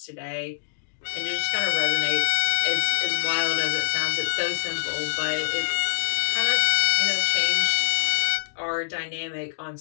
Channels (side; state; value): right; silent; digital silence